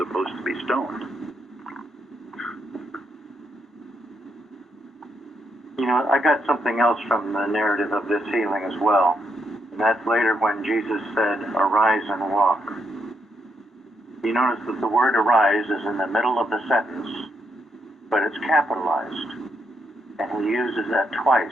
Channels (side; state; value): both; normal; correlation 0.78